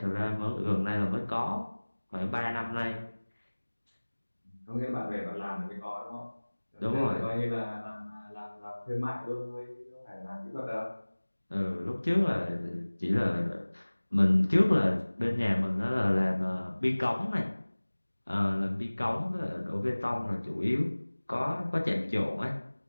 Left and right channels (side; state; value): both; inverted; correlation -1.00